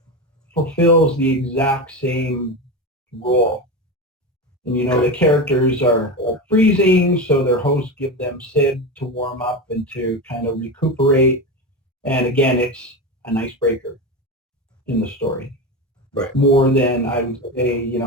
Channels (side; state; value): both; normal; correlation 0.20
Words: fulfills the exact same role. And, the characters are freezing, so their hosts give them sib to warm up and to kind of recuperate. And again, it's an icebreaker in the story. Right. More than, I would say,